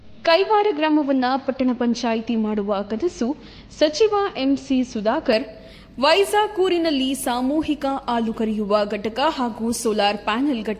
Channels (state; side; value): identical; both; correlation 1.00